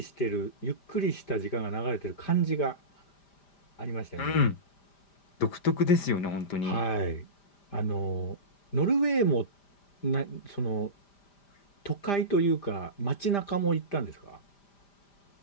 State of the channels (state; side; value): late; right; 5.0 ms